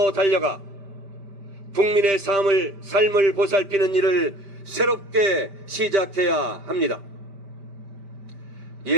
달려가 국민의 삶을 보살피는 일을 새롭게 시작해야 합니다.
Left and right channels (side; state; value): left; late; 5.1 ms